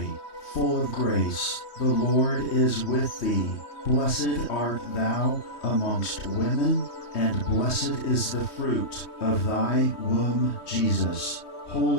full of grace, the Lord is with thee. Blessed art thou amongst women, and blessed is the fruit of thy womb, Jesus.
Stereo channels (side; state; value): right; late; 3.2 ms